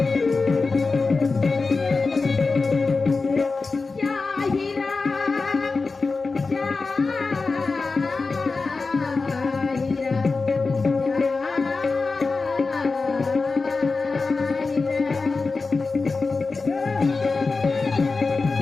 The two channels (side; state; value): right; quieter; 4.1 dB